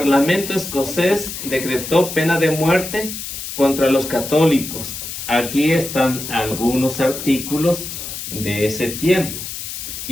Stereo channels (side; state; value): left; noise; hiss, 8 dB below the sound